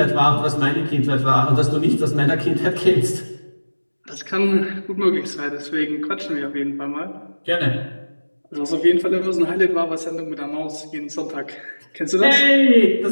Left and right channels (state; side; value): inverted; both; correlation -1.00